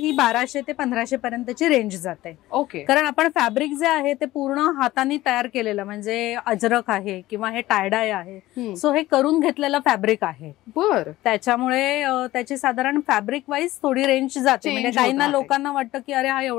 1200 ते 1500 पर्यंतची रेंज जाते. ओके. कारण आपण फॅब्रिक जे आहे ते पूर्ण हाताने तयार केलेलं, म्हणजे अजरक आहे किंवा हे टायडाय आहे, सो हे करून घेतलेलं फॅब्रिक आहे. त्याच्यामुळे त्याची साधारण फॅब्रिक वाईज थोडी रेंज जाते. म्हणजे काहींना लोकांना वाटतं की अरे हा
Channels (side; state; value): right; quieter; 16.7 dB